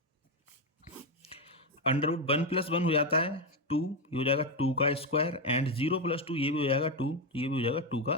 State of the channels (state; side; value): normal; both; correlation 0.08